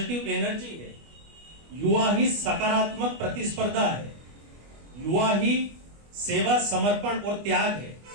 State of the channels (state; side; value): late; left; 25 ms